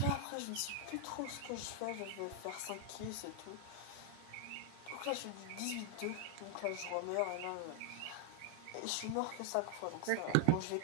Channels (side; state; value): both; different; correlation 0.00